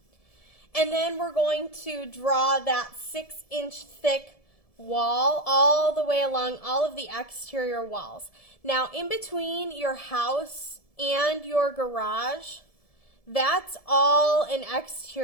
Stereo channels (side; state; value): right; late; 1.7 ms